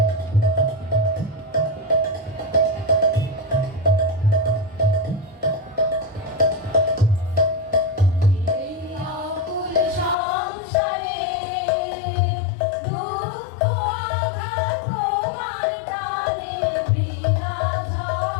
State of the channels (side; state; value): right; drops out; at 10.2 s